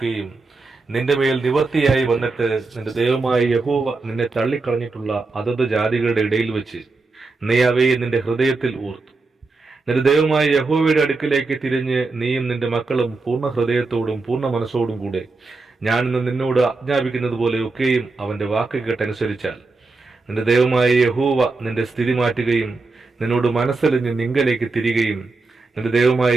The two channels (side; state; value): left; quieter; 3.7 dB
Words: നിന്റെ മേൽ നിവർത്തിയായി വന്നിട്ട് നിന്റെ ദൈവമായ യഹോവ നിന്നെ തള്ളിക്കളഞ്ഞിട്ടുള്ള അതത് ജാതികളുടെ ഇടയിൽ വെച്ച് നീ അവയെ നിന്റെ ഹൃദയത്തിൽ ഓർത്തു. നിന്റെ ദൈവമായ യഹോവയുടെ അടുക്കിലേക്ക് തിരിഞ്ഞ് നീയും നിന്റെ മക്കളും പൂർണ്ണ ഹൃദയത്തോടും പൂർണ്ണ മനസ്സോടും കൂടെ ഞാൻ ഇന്ന് നിന്നോട് ആജ്ഞാപിക്കുന്നത് പോലെ ഒക്കെയും അവന്റെ വാക്ക് കേട്ടനുസരിച്ചാൽ നിന്റെ ദൈവമായ യഹോവ നിന്റെ സ്ഥിതി മാറ്റുകയും നിന്നോട് മനസ്സലിഞ്ഞ് നിങ്കലേക്ക് തിരികെയും നിന്റെ ദൈവമായ